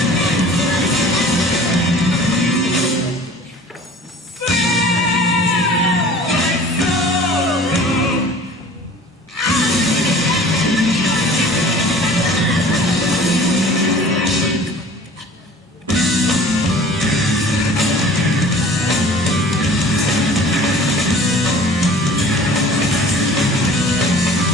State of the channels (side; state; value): both; normal; correlation 0.46